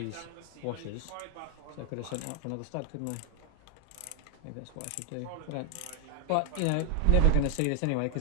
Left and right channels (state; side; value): different; both; correlation 0.00